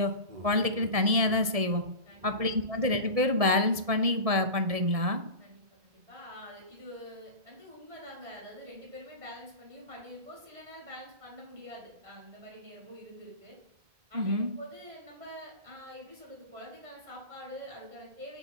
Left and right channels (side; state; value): left; late; 1.7 ms